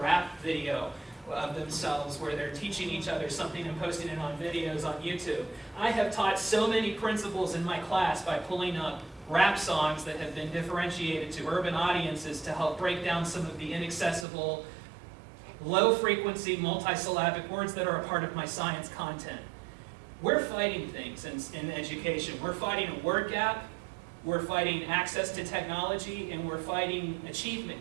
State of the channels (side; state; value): left; drops out; at 14.2 s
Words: video of themselves where they're teaching each other something and posting it on videos on YouTube. I have taught so many principles in my class by pulling up rap songs that have been differentiated to urban audiences to help break down some of the inaccessible, low-frequency, multisyllabic words that are a part of my science content. We're fighting things in education. We're fighting a word gap, we're fighting access to technology, and we're fighting